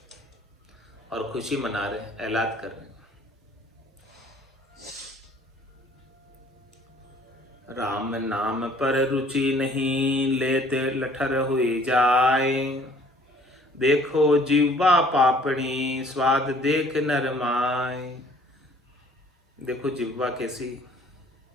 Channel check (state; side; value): normal; both; correlation 0.56